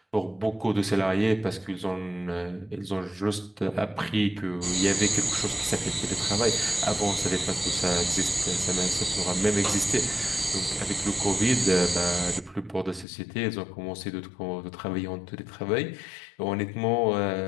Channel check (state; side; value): drops out; right; at 13.1 s